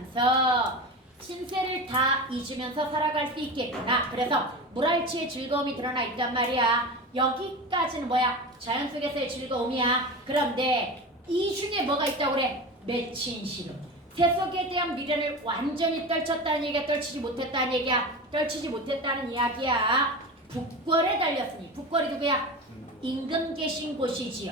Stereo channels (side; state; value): both; normal; correlation 0.28